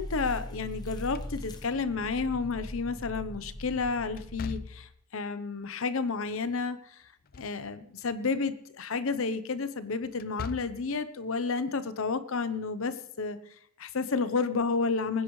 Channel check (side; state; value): right; quieter; 3.9 dB